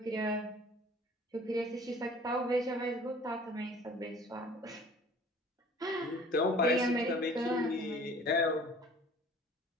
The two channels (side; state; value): both; normal; correlation 0.49